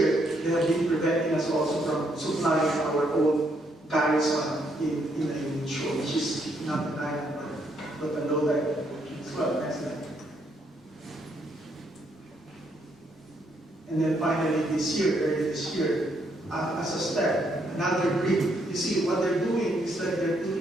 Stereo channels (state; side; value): normal; both; correlation 0.73